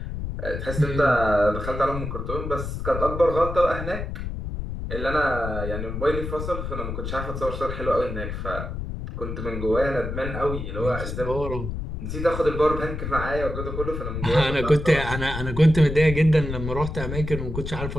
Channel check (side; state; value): left; noise; rumble, 5 dB below the sound